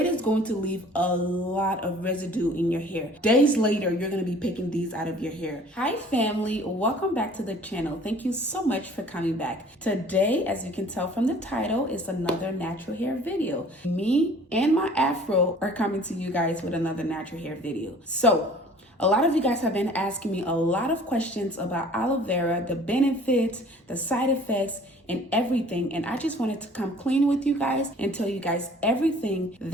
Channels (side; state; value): both; normal; correlation 0.50